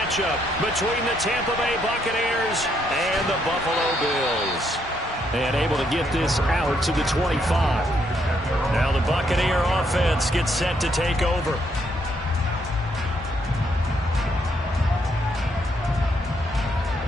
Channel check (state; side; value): normal; both; correlation 0.74